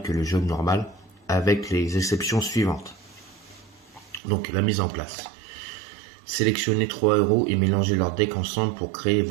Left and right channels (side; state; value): left; drops out; at 4.2 s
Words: que le jeu normal, avec les exceptions suivantes. Donc la mise en place. Sélectionnez 3 héros et mélangez leurs decks ensemble pour créer